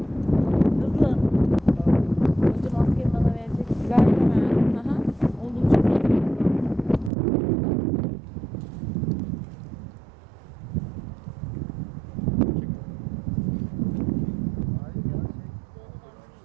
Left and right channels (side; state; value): left; drops out; at 7.1 s